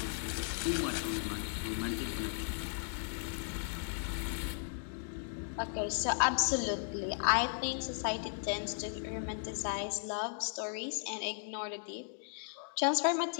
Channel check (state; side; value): silent; right; digital silence